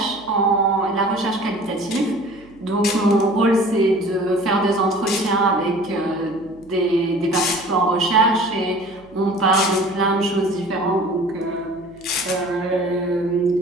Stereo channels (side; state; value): right; noise; hum, 27 dB below the sound